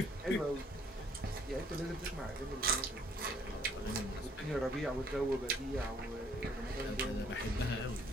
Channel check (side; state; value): both; normal; correlation 0.62